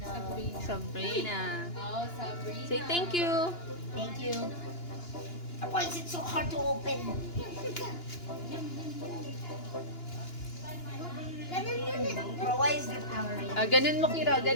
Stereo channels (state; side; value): late; right; 2.9 ms